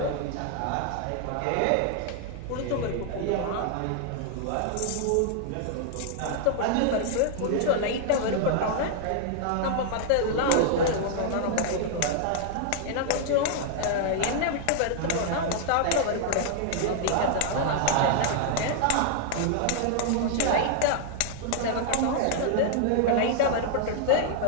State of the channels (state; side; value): different; both; correlation 0.00